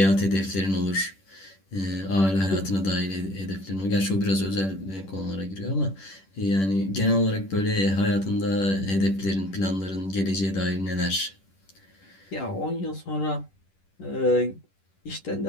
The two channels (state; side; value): late; right; 10 ms